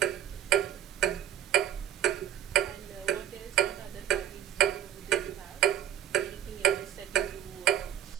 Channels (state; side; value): quieter; left; 10.4 dB